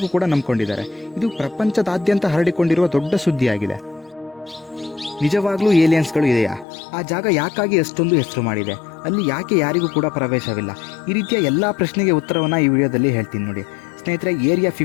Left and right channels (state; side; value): drops out; right; at 6.7 s